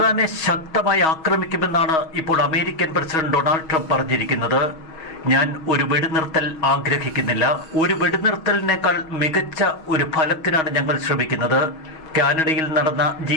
ശക്തമായി ആക്രമിക്കുമെന്നാണ് ഇപ്പോൾ അമേരിക്കൻ പ്രസിഡന്റ് ഡൊണാൾഡ് ട്രംപ് പറഞ്ഞിരിക്കുന്നത്. ഞാൻ ഒരു വെടിനിർത്തൽ ആഗ്രഹിക്കുന്നില്ല. ഒരു വെടിനിർത്തലിനേക്കാൾ മികച്ച ഒരു ഫലത്തിനാണ് ഞങ്ങൾ ശ്രമിക്കുന്നത്. കാനഡയിൽ നടന്ന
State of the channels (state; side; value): late; right; 6.3 ms